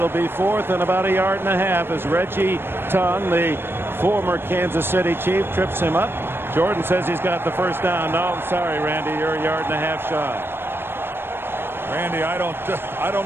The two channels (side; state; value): left; late; 0.11 ms